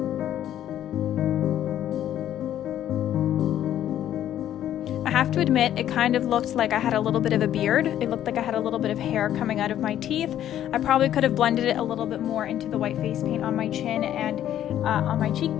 I have to admit, it kind of looked like I had a little bit of a beard. It looked like I had a little bit of hair coming out of my teeth. I probably could have blended it a little bit more into the white face paint on my chin and on my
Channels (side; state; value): right; quieter; 11.4 dB